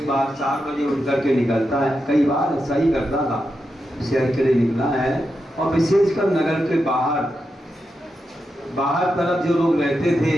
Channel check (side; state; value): both; normal; correlation 0.87